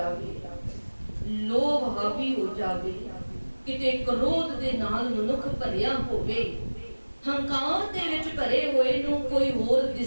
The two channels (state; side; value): inverted; both; correlation -1.00